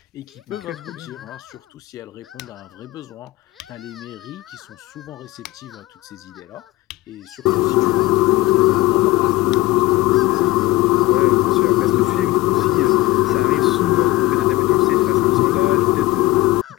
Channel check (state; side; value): quieter; right; 17.7 dB